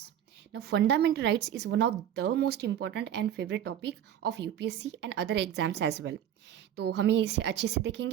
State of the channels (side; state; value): left; quieter; 10.4 dB